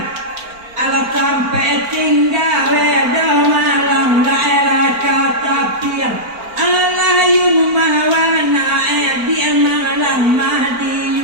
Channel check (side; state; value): left; late; 4.4 ms